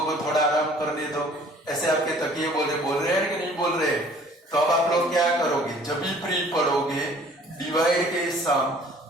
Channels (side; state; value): both; normal; correlation 0.53